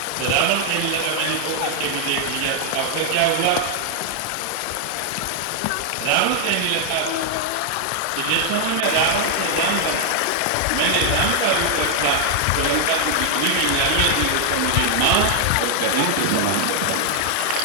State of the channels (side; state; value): both; different; correlation 0.00